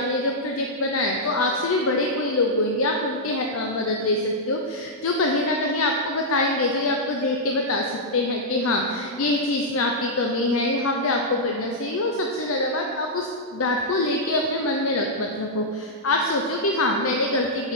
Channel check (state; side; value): normal; both; correlation -0.07